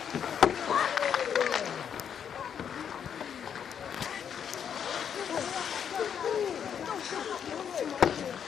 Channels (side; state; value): right; quieter; 8.1 dB